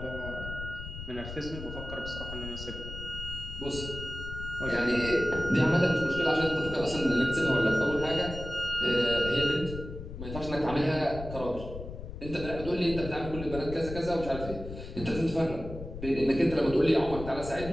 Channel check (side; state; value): left; noise; rumble, 10 dB below the sound